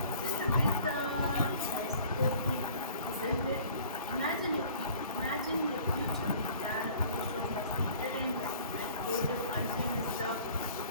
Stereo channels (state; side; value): inverted; both; correlation -0.51